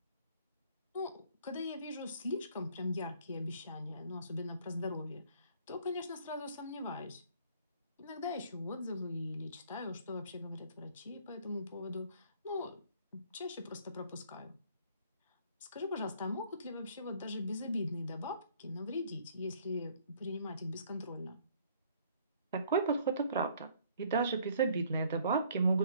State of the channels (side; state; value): both; inverted; correlation -0.59